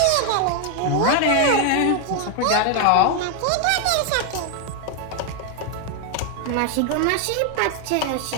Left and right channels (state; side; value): different; both; correlation 0.01